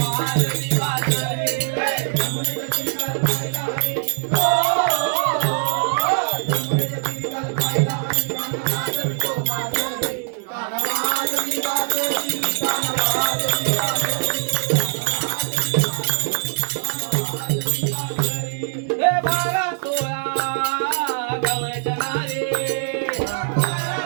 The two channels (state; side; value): silent; left; digital silence